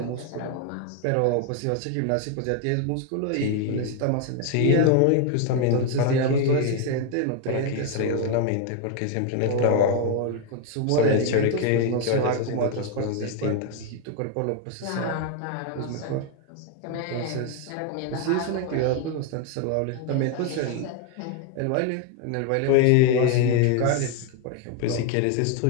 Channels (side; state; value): both; different; correlation 0.01